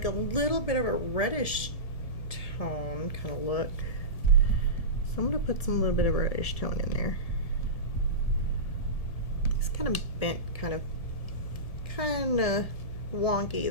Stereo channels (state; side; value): late; right; 1.7 ms